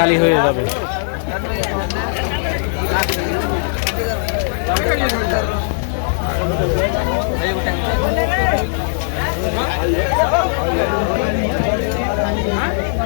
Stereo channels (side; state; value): right; silent; digital silence